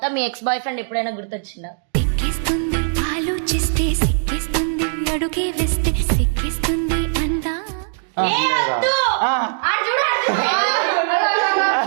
మీ ఎక్స్ బాయ్ ఫ్రెండ్ ఎప్పుడైనా గుర్తొచ్చిందా? సిక్కిస్తుంది ఆలోచిస్తే, సిక్కిస్తుంది అడుగే వేస్తే, సిక్కిస్తుంది అందా.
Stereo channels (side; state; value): left; silent; digital silence